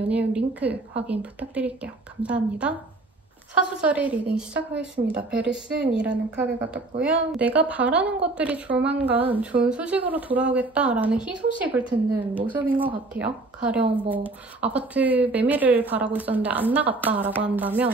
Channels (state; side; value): quieter; left; 3.1 dB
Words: 링크 확인 부탁드릴게요. 감사합니다. 사수자리 리딩 시작하겠습니다. 베리슨이라는 카드가 떴고요. 내가 바라는 것들이 조만간 좋은 소식으로 돌아오겠다라는 희소식을 듣는 모습인 것 같아요. 가령 뭐 아파트 매매를 바라고 있었는데 안 나갔다라고